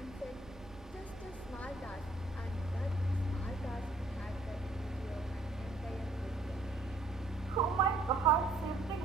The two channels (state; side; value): quieter; left; 3.0 dB